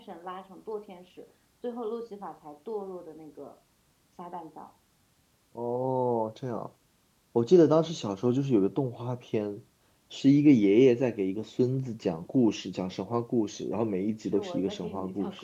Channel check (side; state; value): both; identical; correlation 1.00